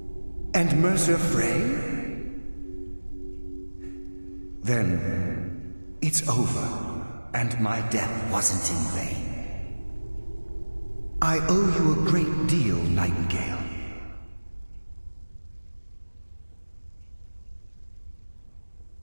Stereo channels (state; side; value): inverted; both; correlation -1.00